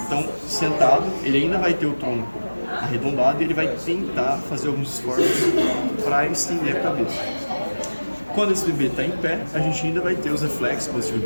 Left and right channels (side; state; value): both; inverted; correlation -1.00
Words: Então, sentado, ele ainda vai ter o tronco arredondado e ele vai tentar fazer alguns esforços para estender a cabeça. Quando esse bebê está em pé, a gente ainda vai ter os reflexos positivos